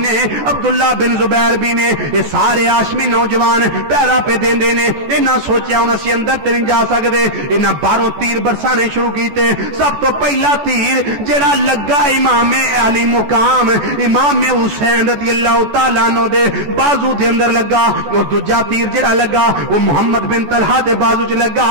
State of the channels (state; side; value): late; left; 14 ms